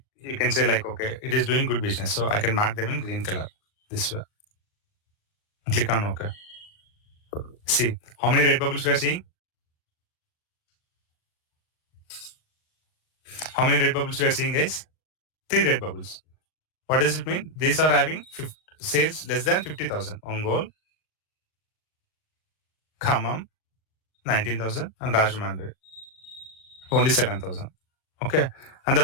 can say like, okay, it is doing good business. So I can mark them in green color this way. Click on OK. See, how many red bubbles we are seeing? How many red bubbles we are seeing, guys? 3 red bubbles. What does it mean? These are having sales less than 50,000. Ongole, Khammam, 19,000 and Rajahmundry, only 7,000. Okay. And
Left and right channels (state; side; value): late; right; 38 ms